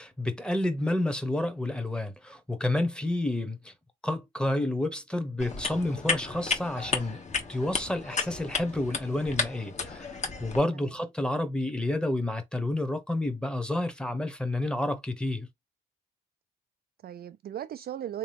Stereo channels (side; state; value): both; normal; correlation 0.79